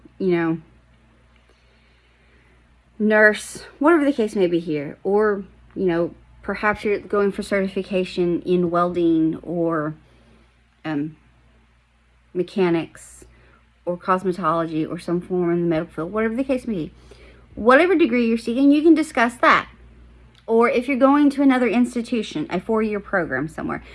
nurse, whatever the case may be here, or perhaps you're going for certification in welding or mechanics or cosmetology or some form in the medical field, whatever the case may be, whatever degree you're seeking, you can discuss that. Or if you're going to another institution, a 4-year program somewhere,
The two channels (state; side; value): identical; both; correlation 1.00